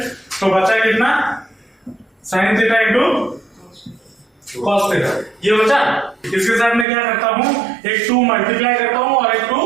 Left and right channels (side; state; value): left; drops out; at 6.9 s